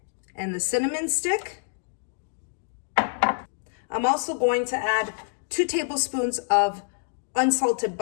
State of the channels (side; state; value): right; silent; digital silence